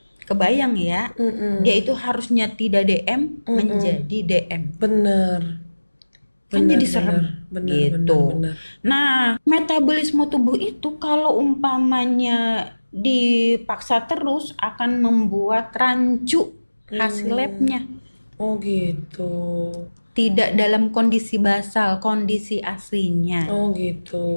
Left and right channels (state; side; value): inverted; both; correlation -1.00